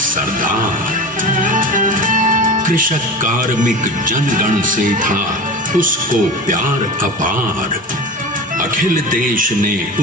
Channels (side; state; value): both; normal; correlation 0.31